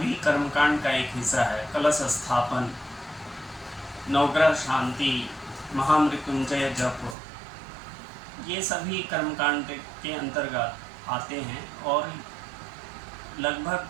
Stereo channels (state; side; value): drops out; left; at 7.2 s